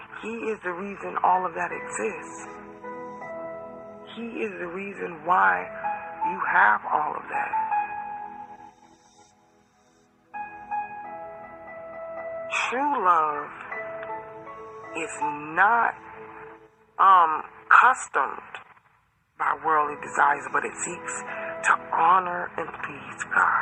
He is the reason all of that exists. He is the reason why you have all of that. True love is not customed by worldly desires, but it seeks to honor and please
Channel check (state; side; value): identical; both; correlation 1.00